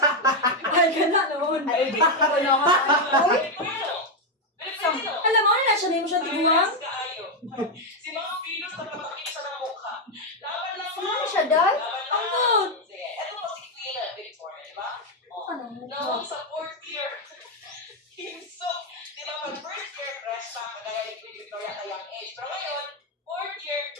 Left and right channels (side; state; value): both; normal; correlation 0.04